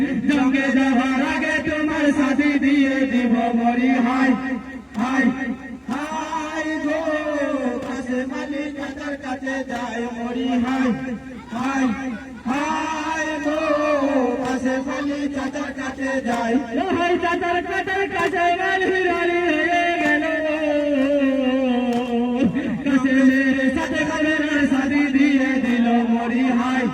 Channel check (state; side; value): identical; both; correlation 1.00